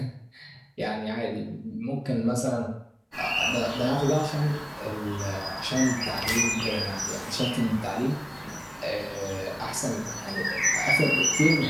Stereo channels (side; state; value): both; identical; correlation 1.00